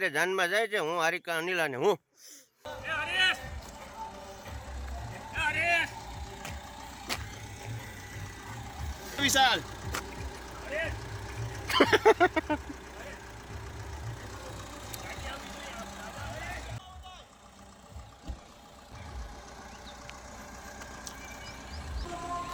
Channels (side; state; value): both; identical; correlation 1.00